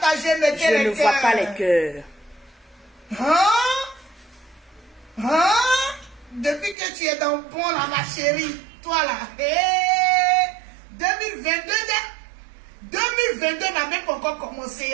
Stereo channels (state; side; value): drops out; left; at 6.8 s